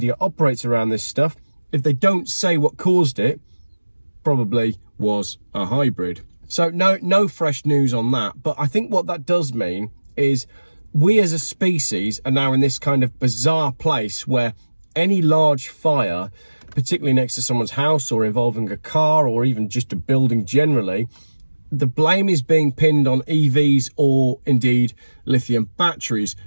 operates around this stuff, if they don't say what caused it, probably was a hybrid. So no fresh news on that. But I think what that does mean is we as a species are now in this kind of bizarre place where any large fire, particularly next to someone's house or involving a car or even just a building generally, the blame is being pinned on EVs or indeed lithium batteries.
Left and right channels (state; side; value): inverted; both; correlation -1.00